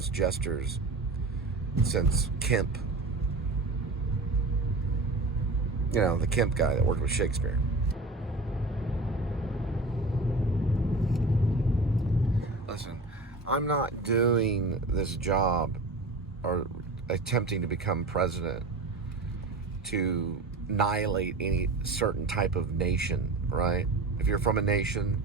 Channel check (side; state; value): left; quieter; 3.1 dB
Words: jesters since Kemp. You know, the Kemp guy that worked with Shakespeare. Listen, I'm not doing this job or attempting to become president to annihilate any certain type of nation, right? If you're from a nation,